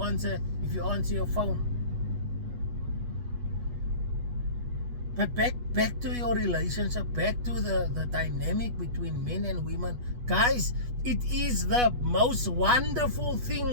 your phone. But back to your relationship, back to the dynamic between men and women. Guys, it is the most wonderful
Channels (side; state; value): left; late; 8.2 ms